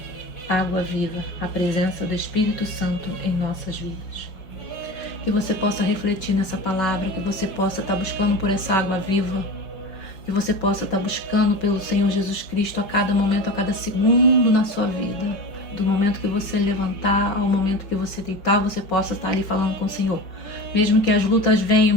água viva, a presença do Espírito Santo em nossas vidas. Que você possa refletir nessa palavra, que você possa estar buscando por essa água viva, que você possa estar buscando pelo Senhor Jesus Cristo a cada momento, a cada segundo na sua vida. Do momento que você levantar ao momento que você deitar, você possa estar ali falando com o Senhor. Mesmo que as lutas venham,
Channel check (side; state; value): right; late; 5.0 ms